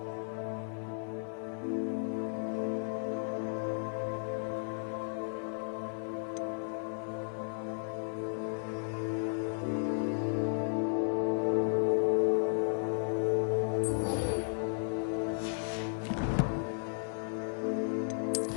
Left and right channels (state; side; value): silent; right; 55 dB below the other